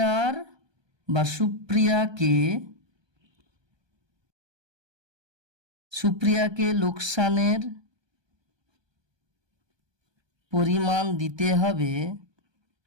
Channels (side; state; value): left; late; 1.2 ms